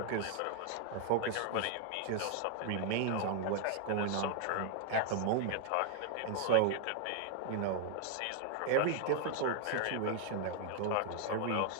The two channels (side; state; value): both; different; correlation 0.00